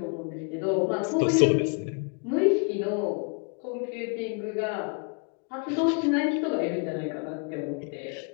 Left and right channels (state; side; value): quieter; right; 37.7 dB